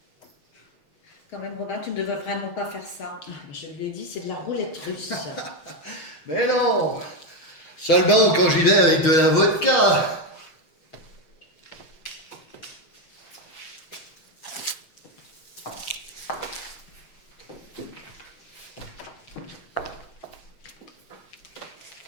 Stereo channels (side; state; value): right; late; 6.4 ms